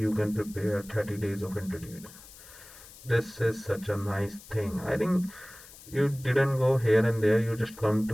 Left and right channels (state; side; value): noise; left; hiss, 19 dB below the sound